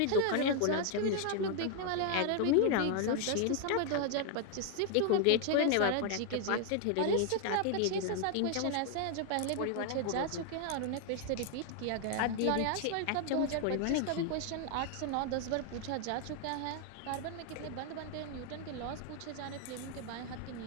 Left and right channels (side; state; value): both; different; correlation 0.00